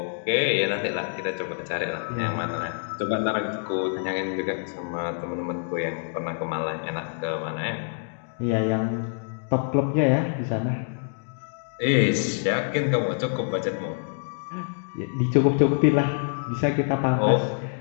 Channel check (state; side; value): silent; right; digital silence